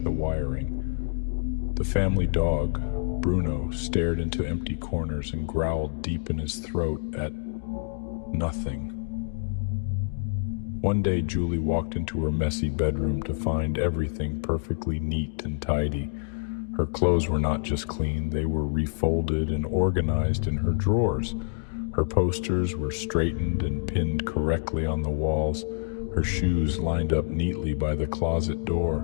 the wiring. The family dog, Bruno, stared into empty corners and growled deep in his throat at nothing. One day, Julie walked into her messy bedroom to find everything perfectly neat and tidy. Her clothes were not just clean, they were refolded and organized in her drawers. Her posters were straightened and pinned correctly on the walls. Her shoes lined up neatly by the closet door,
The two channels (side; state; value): right; silent; digital silence